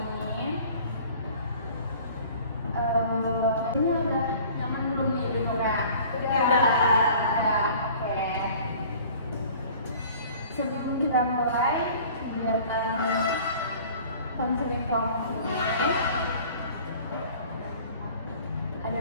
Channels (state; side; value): inverted; both; correlation -0.48